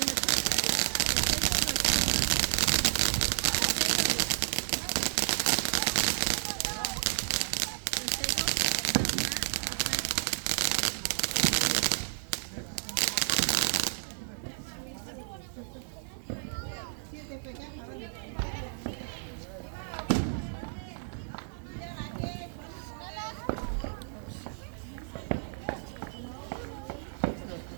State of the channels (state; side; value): silent; left; digital silence